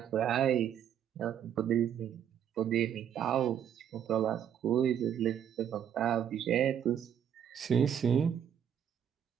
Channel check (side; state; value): left; quieter; 9.3 dB